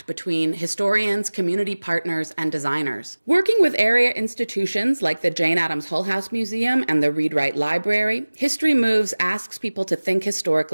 between historians, community partners, and designers. Working with area institutions like the Jane Addams Hull House Museum and the Read Write Library, History Moves asks people to think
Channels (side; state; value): both; inverted; correlation -1.00